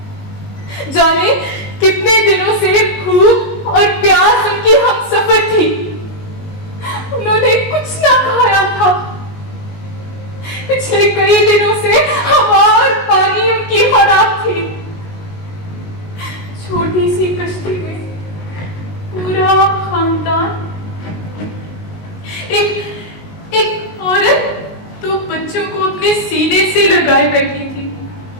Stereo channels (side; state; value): right; late; 19 ms